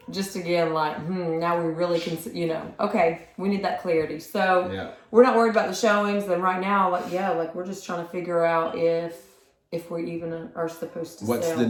just again, now we really can, okay, we need that clarity. So we're not worried about the showings. And right now, we're just trying to figure out if we even are supposed to What's sell. the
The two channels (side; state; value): both; identical; correlation 1.00